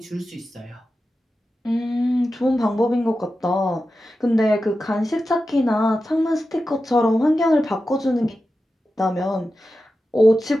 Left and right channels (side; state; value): both; normal; correlation 0.92